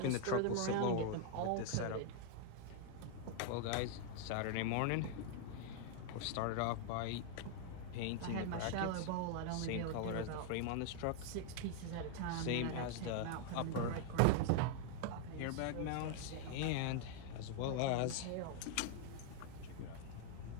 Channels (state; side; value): different; both; correlation 0.00